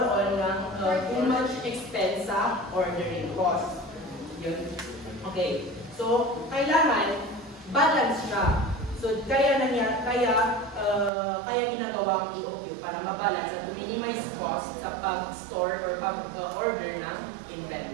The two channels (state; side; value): drops out; left; at 11.1 s